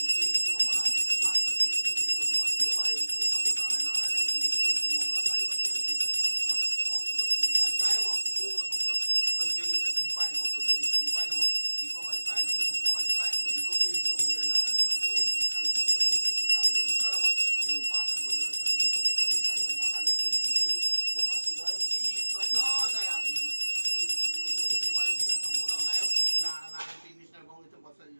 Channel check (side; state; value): both; inverted; correlation -1.00